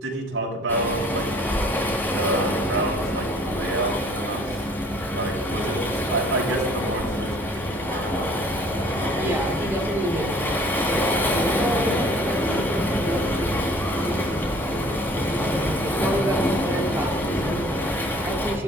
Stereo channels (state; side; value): normal; both; correlation 0.54